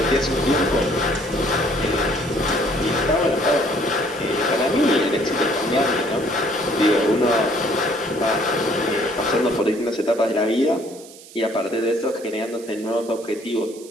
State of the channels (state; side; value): noise; right; hiss, 19 dB below the sound